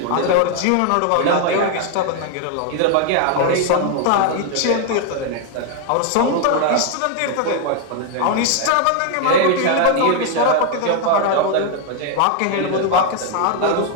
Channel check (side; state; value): both; different; correlation 0.00